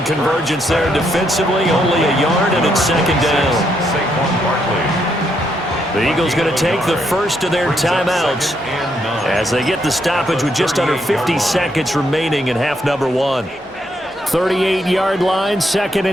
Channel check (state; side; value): normal; both; correlation 0.76